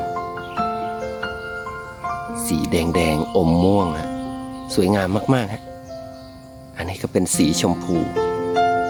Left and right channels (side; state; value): both; identical; correlation 1.00